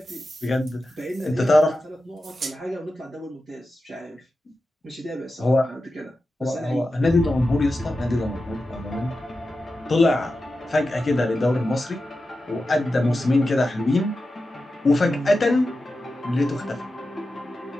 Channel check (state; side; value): normal; both; correlation 0.92